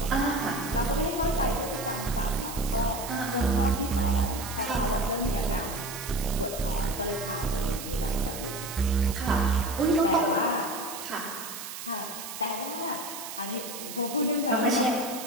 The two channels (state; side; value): noise; right; hiss, 9 dB below the sound